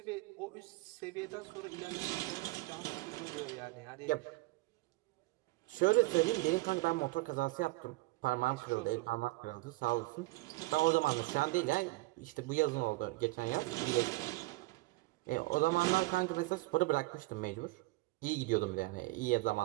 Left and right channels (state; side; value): quieter; left; 21.8 dB